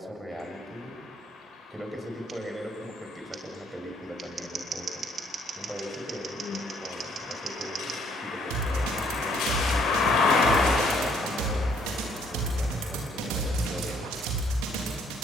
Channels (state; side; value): normal; both; correlation 0.65